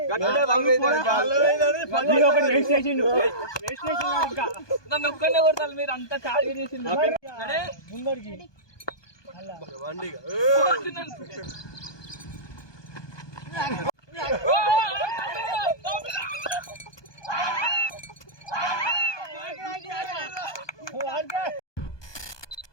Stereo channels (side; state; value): right; late; 1.2 ms